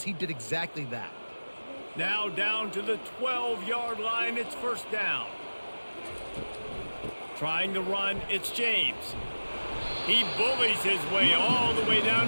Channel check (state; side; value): inverted; both; correlation -1.00